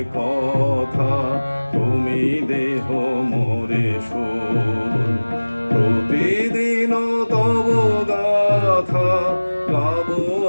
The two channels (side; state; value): both; inverted; correlation -1.00